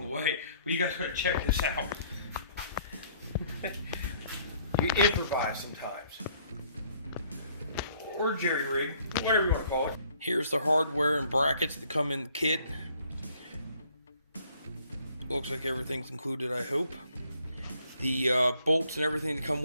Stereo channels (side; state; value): both; inverted; correlation -0.62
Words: the way, but you guys gotta check this out. You improvise sometimes. Or jerry rig, whatever you want to call it. Here's the hardware and brackets that come in the kit. Looks like everything's included, I hope. The bolts and everything that come